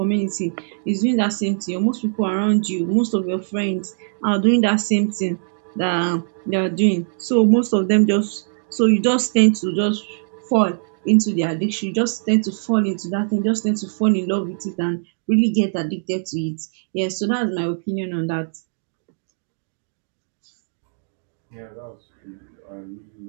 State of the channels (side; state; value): left; silent; digital silence